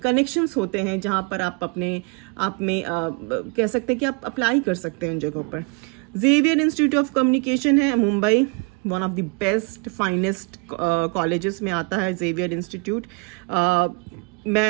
होते हैं जहां पर आप अपने आप में कह सकते हैं कि आप अप्लाई कर सकते हैं उन जगहों पर। जेवियर इंस्टीट्यूट ऑफ कम्युनिकेशन है Mumbai, one of the best finest colleges में आता है जेवियर इंस्टीट्यूट।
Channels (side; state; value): left; quieter; 30.1 dB